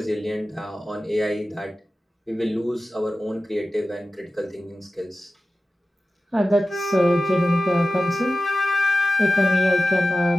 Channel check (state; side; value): normal; both; correlation 0.94